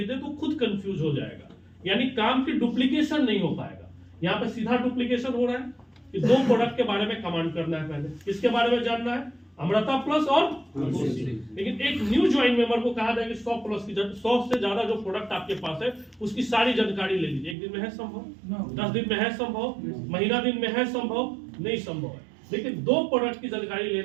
दे तो खुद कंफ्यूज हो जाएगा, यानी काम की डुप्लीकेशन नहीं हो पाएगा। यहाँ पे सीधा डुप्लीकेशन हो रहा है कि 2 प्रोडक्ट के बारे में कमांड करना है, पहले किसके बारे में जानना है? अमृता प्लस और तुलसी। लेकिन एक न्यू ज्वाइन मेंबर को कहा जाएगा 100 प्लस की 100 से ज्यादा जो प्रोडक्ट आपके पास है उसकी सारी जानकारी ले लीजिए। एक दिन में है संभव? 10 दिन में है संभव? महीना दिन में है संभव? नहीं संभव है। लेकिन 2 प्रोडक्ट की जानकारी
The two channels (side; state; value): left; drops out; at 17.6 s